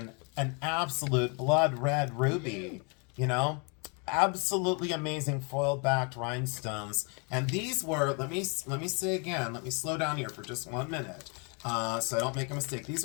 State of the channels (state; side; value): quieter; right; 34.9 dB